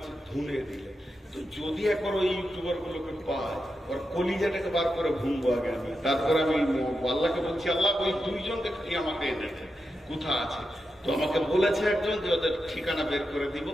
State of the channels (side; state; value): both; normal; correlation 0.88